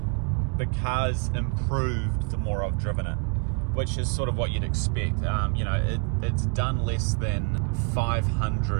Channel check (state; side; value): quieter; left; 32.3 dB